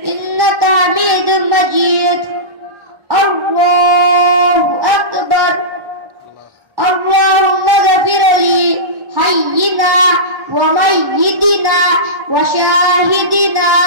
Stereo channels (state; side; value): late; left; 1.3 ms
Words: ইন্নাকা হামিদুম মাজিদ। আল্লাহু আকবার। اللهم اغفر لي حينا وميتنا وشاهدنا